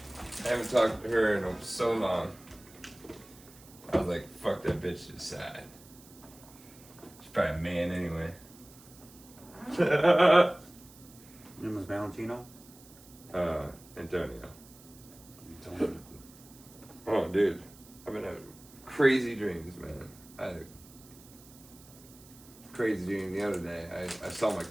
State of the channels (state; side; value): noise; right; hiss, 22 dB below the sound